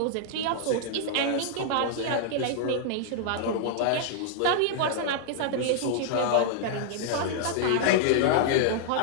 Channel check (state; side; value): different; both; correlation -0.01